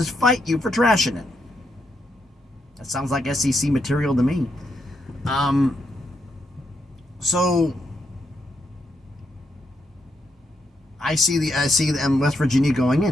fight you for trashing it. That sounds like SEC material to me. So I see West Virginia going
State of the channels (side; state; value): both; normal; correlation 0.80